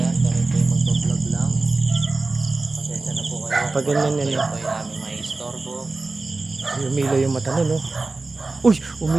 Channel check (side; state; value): left; quieter; 3.5 dB